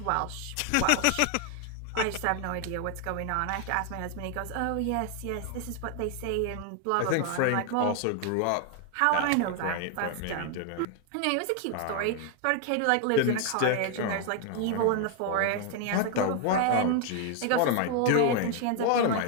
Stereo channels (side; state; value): both; different; correlation 0.00